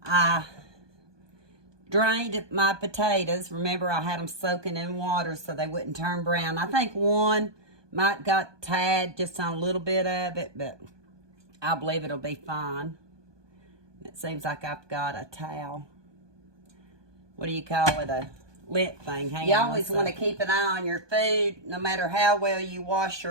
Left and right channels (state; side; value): late; left; 1.2 ms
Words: I drained my potatoes. Remember, I had them soaking in water so they wouldn't turn brown. I think one might got tad just on a little bit of it, but I believe it'll be fine. It seems like I've got a towel. What do you call it? A lint thing. Hang on. You always want to keep an eye on your food, no matter how well you wash